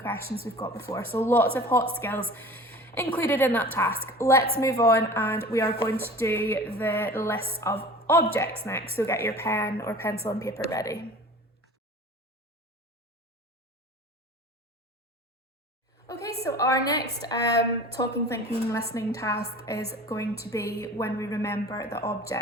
we've got before. So lots of hot skills included in that task. Let's move on, and we are going to do the list of objects next. So get your pen or pencil and paper ready. Okay, so our next talking, thinking, listening task is going to be when we remember the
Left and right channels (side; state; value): both; normal; correlation 0.40